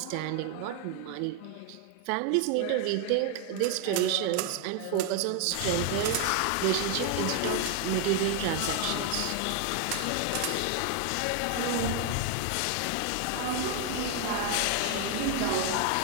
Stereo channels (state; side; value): different; both; correlation 0.01